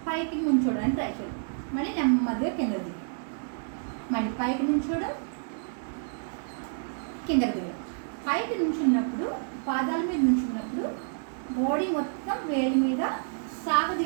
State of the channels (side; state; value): left; silent; digital silence